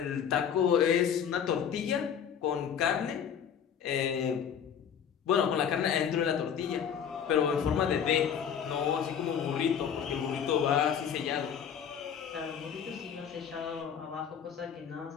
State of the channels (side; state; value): right; quieter; 8.1 dB